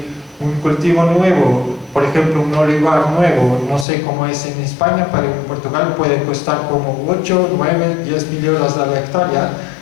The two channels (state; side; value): drops out; right; at 3.9 s